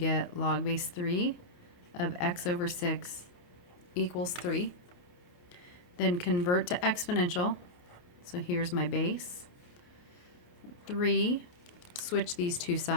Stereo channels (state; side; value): late; right; 28 ms